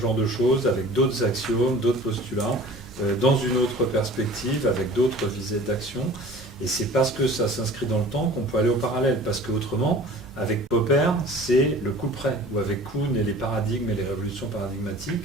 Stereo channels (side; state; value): both; normal; correlation 0.44